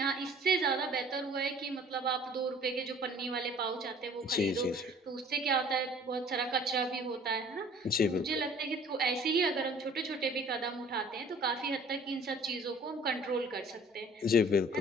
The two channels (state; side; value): normal; both; correlation 0.51